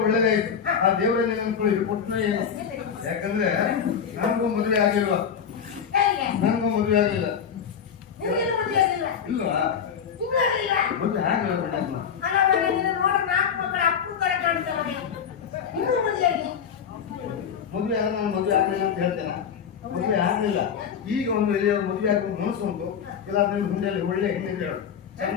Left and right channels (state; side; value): quieter; right; 7.5 dB